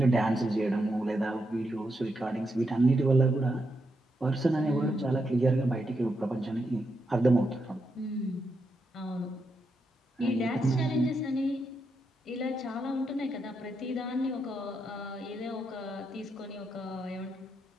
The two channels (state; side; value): normal; both; correlation 0.83